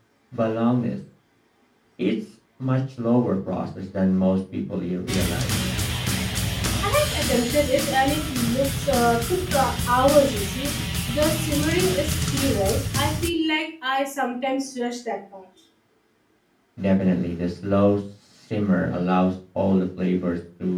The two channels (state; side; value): identical; both; correlation 1.00